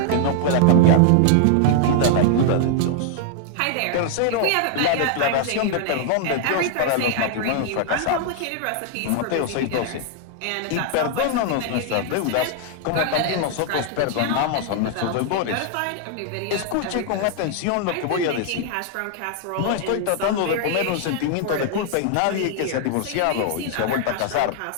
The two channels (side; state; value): both; different; correlation 0.00